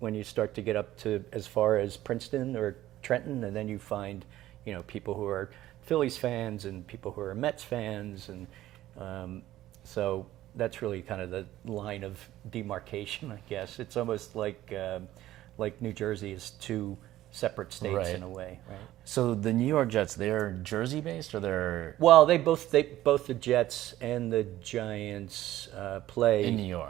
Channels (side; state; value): left; quieter; 14.4 dB